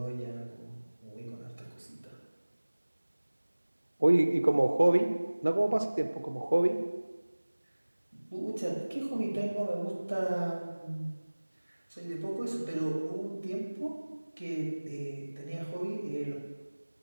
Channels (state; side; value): inverted; both; correlation -1.00